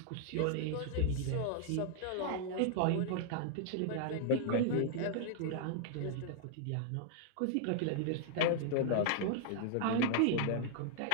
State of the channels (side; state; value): both; different; correlation -0.01